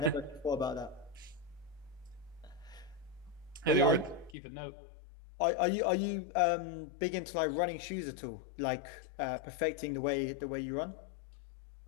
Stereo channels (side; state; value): right; drops out; at 4.4 s